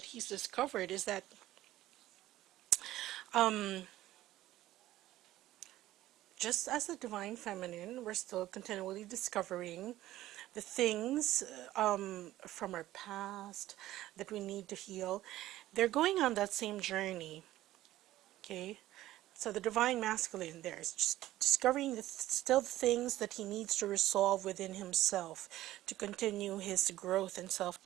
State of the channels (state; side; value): quieter; left; 15.0 dB